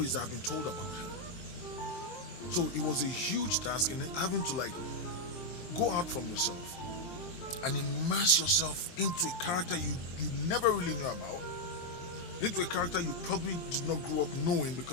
that have been told about him. So it was a huge task in having to go out from yourself and immerse yourself into a character you never really knew about, into a character you probably did not grow up knowing,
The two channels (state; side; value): late; right; 23 ms